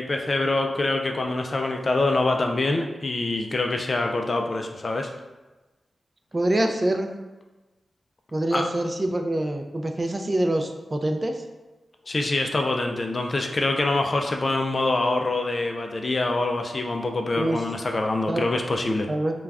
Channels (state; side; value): normal; both; correlation 0.93